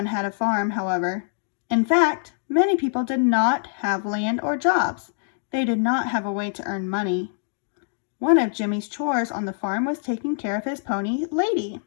had a farm, however. In fact, many people did not have land or jobs. They did not have a way to earn money. One of Jimmy's chores on the farm was taking care of his pony, Lady.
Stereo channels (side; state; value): right; silent; digital silence